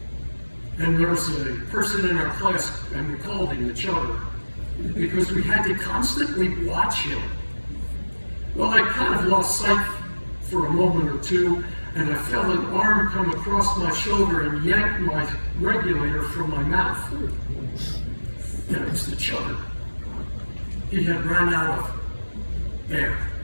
and there was a person in our class, and we called him the chugger, because we had to constantly watch him. Well, I kind of lost sight for a moment or two, and I felt an arm come across my shoulder and yank my regulator from my mouth. And it was the chugger. He had run out of air.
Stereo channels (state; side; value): inverted; both; correlation -1.00